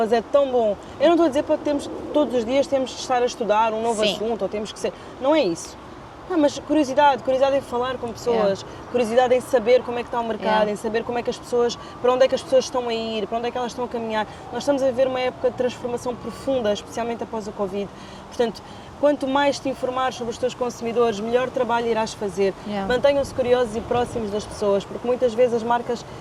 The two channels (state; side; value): identical; both; correlation 1.00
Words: é tão bom. Eu não estou a dizer para termos, todos os dias temos de estar a estudar um novo assunto, ou temos que ser, não é isso. Mas curiosidade em falar com pessoas, curiosidade em saber como é que está o mercado, em saber como é que as pessoas, para onde é que as pessoas estão a ir, para onde é que elas estão a caminhar. Nós estamos a viver uma época de transformação profunda, especialmente após o Covid. Portanto, Quanto mais te informares sobre os teus consumidores, melhor trabalho irás fazer. Yeah. Mantenham-se curiosos e próximos das pessoas, porque muitas vezes as marcas